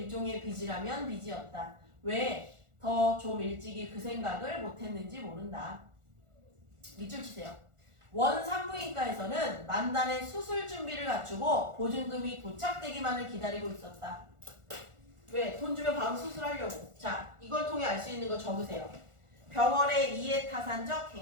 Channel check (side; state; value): left; late; 1.4 ms